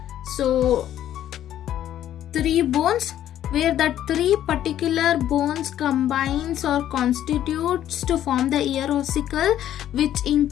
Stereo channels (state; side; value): quieter; right; 11.6 dB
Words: so 3 bones, where that 3 particular bones combines or constitutes to form the ear ossicle, which